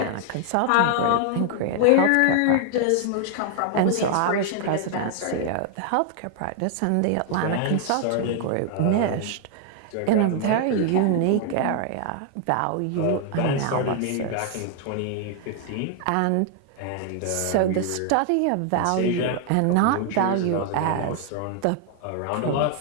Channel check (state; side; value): different; both; correlation 0.00